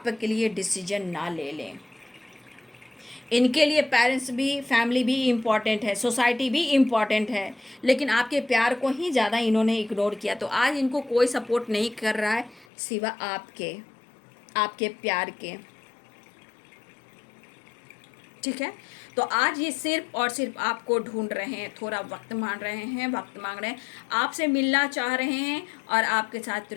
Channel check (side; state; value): right; drops out; at 12.7 s